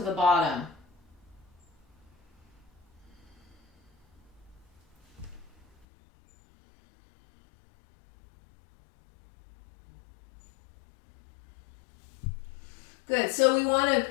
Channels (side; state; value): right; drops out; at 5.9 s